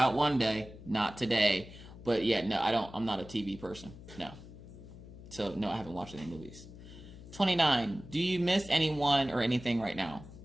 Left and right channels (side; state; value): left; noise; hum, 16 dB below the sound